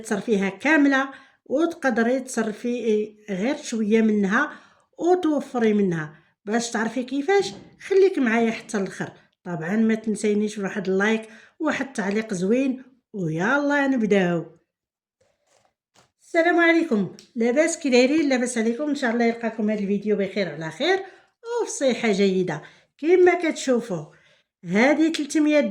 كامله وتقدري تصرفي غير شويه منها وتوفري منها. باش تعرفي كيفاش خليك معايا حتى الاخر. طبعا ما تنسينيش بواحد اللايك وواحد التعليق زوين ويلا نبداو. السلام عليكم، لاباس كي دايرين؟ لاباس عليكم؟ ان شاء الله يلقاكم هذا الفيديو بخير على خير وفي صحه جيده. كما كتشوفوا هذه 300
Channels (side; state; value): both; identical; correlation 1.00